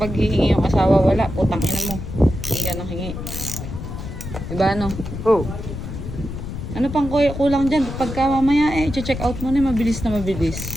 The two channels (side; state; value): left; noise; rumble, 8 dB below the sound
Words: hihingi yung asawa, wala. Putang ina mo. Hindi ka nang hingi. Diba ano? Oh. Ano pang kulang dyan? Pagka mamaya check out mo na mabilis na